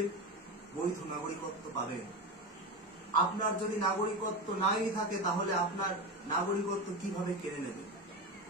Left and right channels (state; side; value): normal; both; correlation 0.20